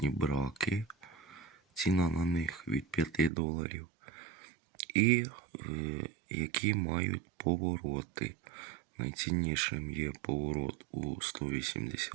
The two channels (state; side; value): drops out; left; at 3.3 s